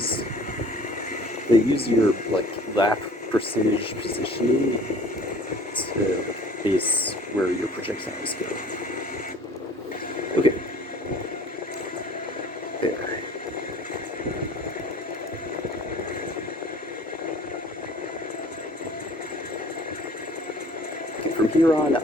your lap percentage positioning to base where your projectiles go. Okay. There. Okay, from here on,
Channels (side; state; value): both; normal; correlation 0.50